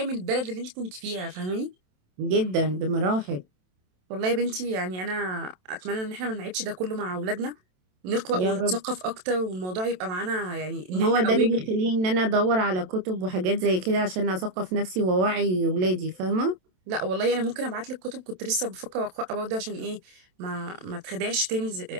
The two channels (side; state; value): left; late; 27 ms